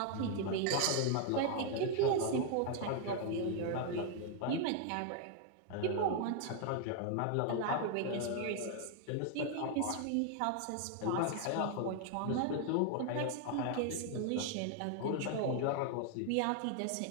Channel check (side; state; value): both; different; correlation 0.00